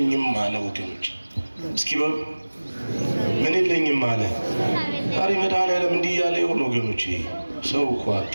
አለ ወገኖች። እስኪ ምን የለኝም አለ? ዛሬ መድኃኒዓለም እንዲህ ያለ ይሆን ወገኖቼ? ሰው እኮ አጣ።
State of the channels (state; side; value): inverted; both; correlation -1.00